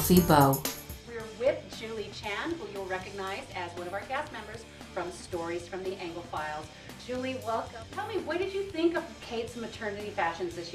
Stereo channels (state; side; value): identical; both; correlation 1.00